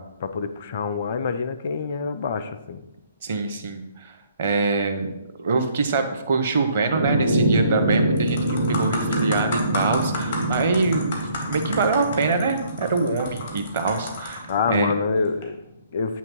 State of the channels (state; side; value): inverted; both; correlation -0.63